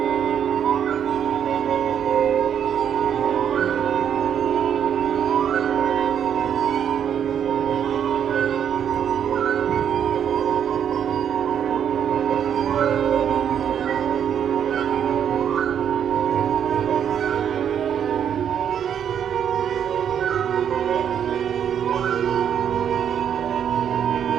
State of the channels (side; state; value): left; quieter; 8.7 dB